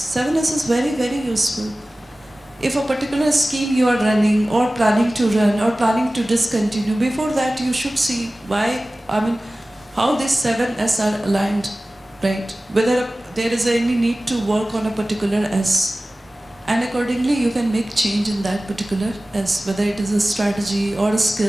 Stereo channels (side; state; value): both; normal; correlation 0.97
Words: 7S is very, very useful. If a particular scheme you are running or planning to run or planning to discontinue, before that you should see why, how these 7S are aligned, right? Whether there is any need to work on a particular S. And accordingly you can make change in that particular S, whether it is a strategy or